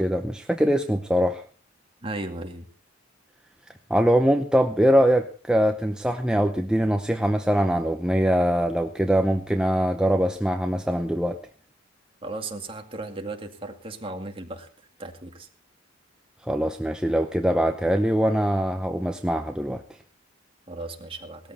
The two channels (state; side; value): normal; both; correlation 0.90